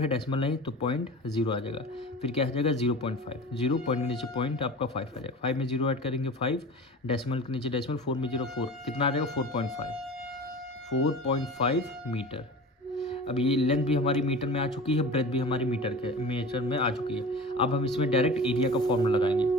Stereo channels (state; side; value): normal; both; correlation 0.35